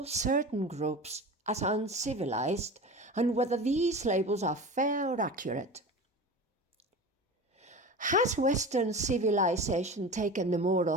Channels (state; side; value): normal; both; correlation 0.32